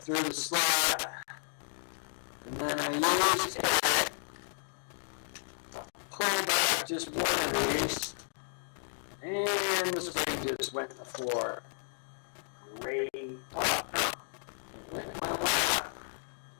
through the slot, and then I used it to pull back just one of these, and this thing just went to the floor. Great.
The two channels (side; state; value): right; silent; digital silence